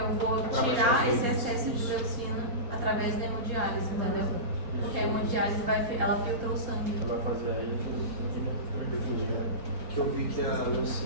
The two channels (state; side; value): late; left; 4.4 ms